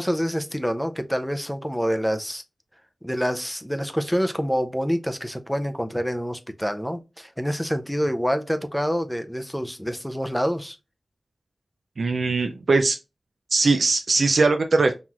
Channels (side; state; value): both; normal; correlation 0.96